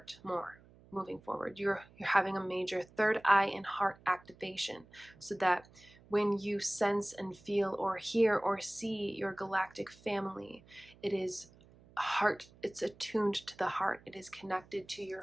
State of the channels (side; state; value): right; noise; hum, 25 dB below the sound